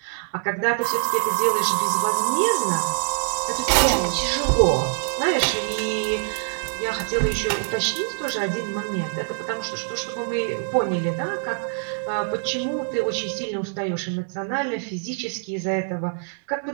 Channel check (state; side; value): silent; left; 59 dB below the other